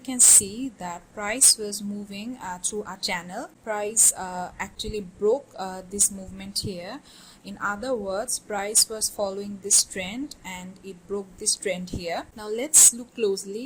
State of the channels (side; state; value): both; identical; correlation 1.00